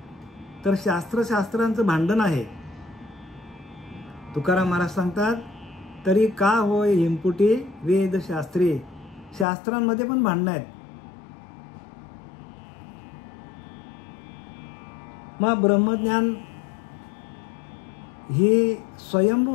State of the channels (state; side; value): drops out; right; at 9.5 s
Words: तर शास्त्रांचं भांडण आहे. तुकाराम महाराज सांगतात, तरी का होय हिमपुटी वेदशास्त्री. शास्त्रांमध्ये पण भांडणं आहेत. मग ब्रह्मज्ञान ही स्वयंभू